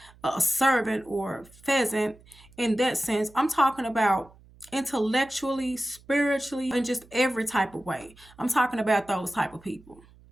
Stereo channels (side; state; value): right; noise; hum, 26 dB below the sound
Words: a servant or pheasant in that sense. I'm talking about intellectually, spiritually, and just every type of way. I'm talking about those type of people.